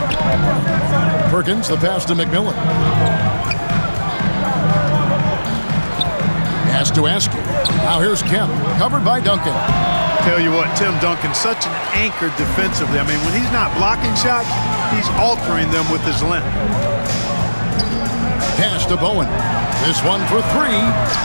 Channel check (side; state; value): both; inverted; correlation -1.00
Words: Perkins, the pass to McMillan. Pass to Askew. Now here's Kemp, covered by Duncan. Tell you what, Tim Duncan's such an anchor defensively. I mean, when he's not blocking shots, he's altering them with his length. Pass to Bowen. This one for 3.